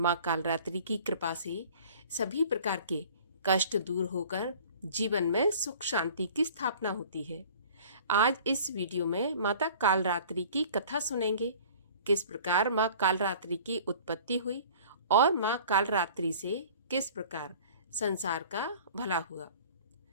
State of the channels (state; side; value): inverted; both; correlation -0.47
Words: कालरात्रि की कृपा से सभी प्रकार के कष्ट दूर होकर जीवन में सुख शांति की स्थापना होती है। आज इस वीडियो में माता कालरात्रि की कथा सुनेंगे। किस प्रकार माँ कालरात्रि की उत्पत्ति हुई और माँ कालरात्रि से किस प्रकार संसार का भला हुआ।